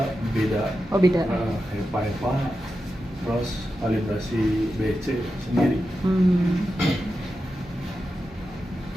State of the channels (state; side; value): normal; both; correlation 0.90